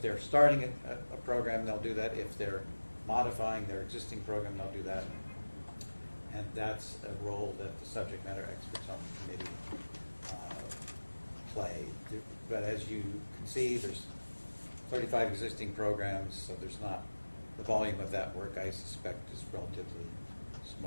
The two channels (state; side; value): inverted; both; correlation -1.00